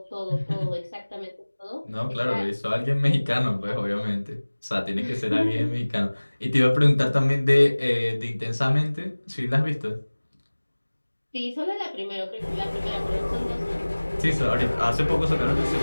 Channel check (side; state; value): both; inverted; correlation -1.00